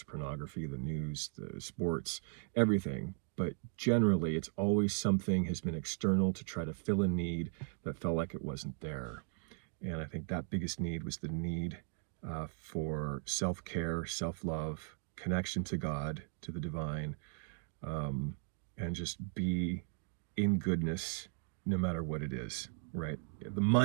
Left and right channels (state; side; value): silent; left; 53 dB below the other